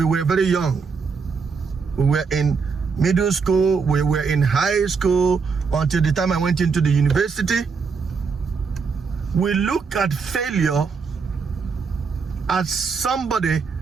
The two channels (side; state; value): left; quieter; 5.3 dB